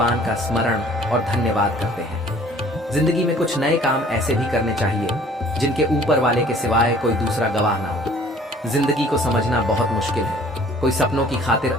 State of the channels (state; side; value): normal; both; correlation 0.53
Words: का स्मरण और धन्यवाद करते हैं। जिंदगी में कुछ नए काम ऐसे भी करने चाहिए जिनके ऊपर वाले के सिवाय कोई दूसरा गवाह ना हो। जिंदगी को समझना बहुत मुश्किल है। कोई सपनों की खातिर